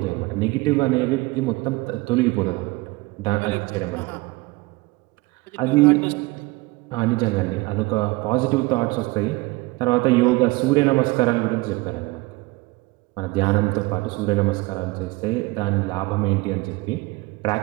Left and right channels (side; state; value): left; quieter; 22.9 dB